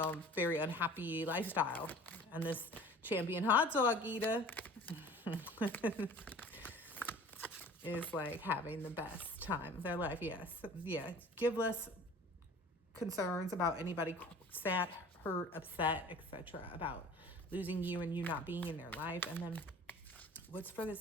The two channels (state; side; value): normal; both; correlation 0.45